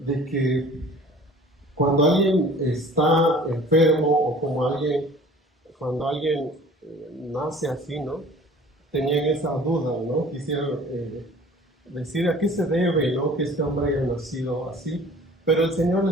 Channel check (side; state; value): both; normal; correlation 0.47